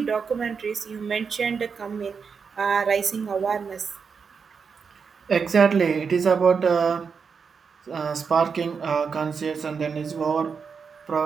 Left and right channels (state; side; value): quieter; left; 5.8 dB